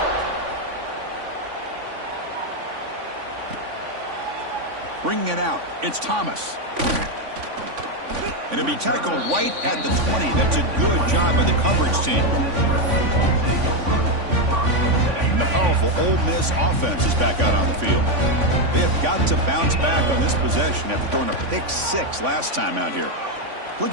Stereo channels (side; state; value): left; late; 3.5 ms